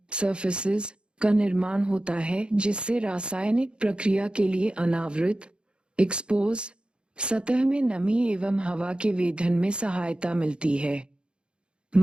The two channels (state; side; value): late; left; 0.054 ms